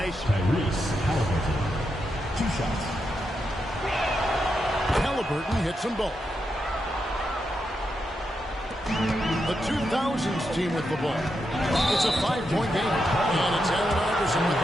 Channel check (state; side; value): normal; both; correlation 0.85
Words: Halliburton. 2 shots. Halliburton hits them both. The 2000s team with the ball. It's a 5-point game. And it's Allen Iverson with